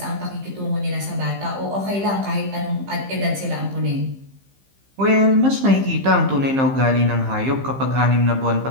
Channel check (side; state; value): left; late; 15 ms